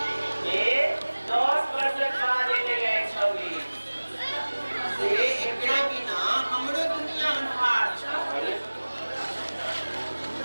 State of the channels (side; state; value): both; inverted; correlation -1.00